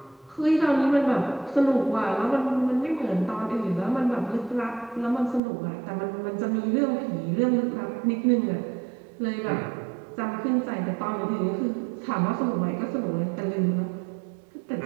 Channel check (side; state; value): left; drops out; at 5.4 s